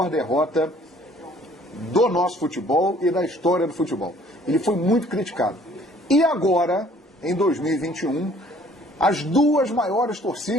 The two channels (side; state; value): both; normal; correlation 0.57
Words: derrota do nosso futebol e da história do futebol. Ele foi muito criticado. E agora, em 2021, as duas maiores